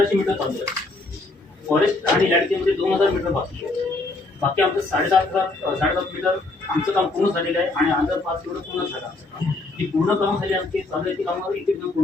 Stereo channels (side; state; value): right; quieter; 3.1 dB